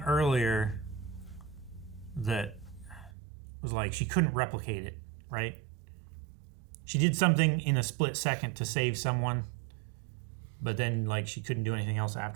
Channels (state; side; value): drops out; left; at 3.1 s